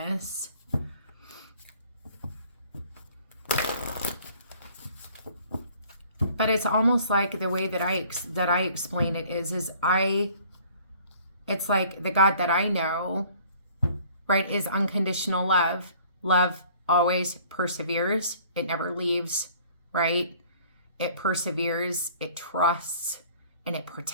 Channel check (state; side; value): inverted; both; correlation -0.54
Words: But it's almost like the way that I explain it is it's like the God that I know, right, is unconditional love. Love always perseveres. It never leaves, right? It perseveres, it trusts, and it